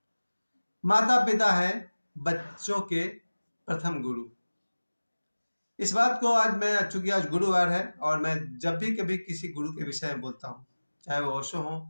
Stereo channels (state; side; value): inverted; both; correlation -1.00